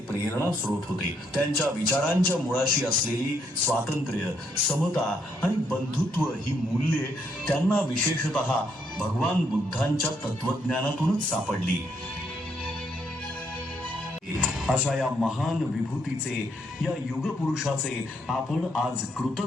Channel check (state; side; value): normal; both; correlation 0.74